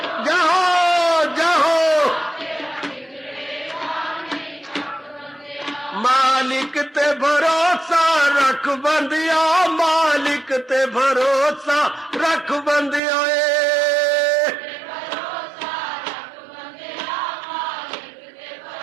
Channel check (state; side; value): drops out; left; at 13.0 s